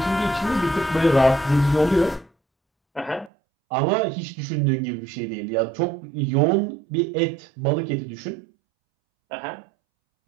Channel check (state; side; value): drops out; left; at 3.3 s